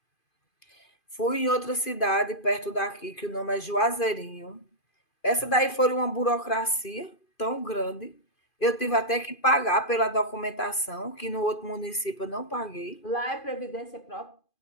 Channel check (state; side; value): late; right; 2.5 ms